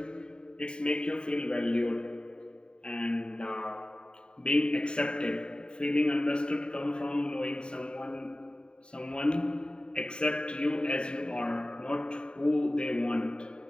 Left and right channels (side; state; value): right; late; 0.050 ms